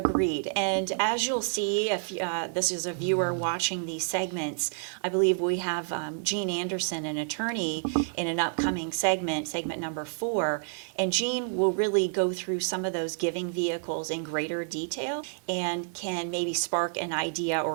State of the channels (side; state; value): left; silent; digital silence